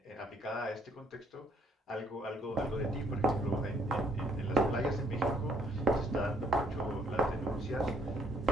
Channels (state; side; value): normal; both; correlation 0.67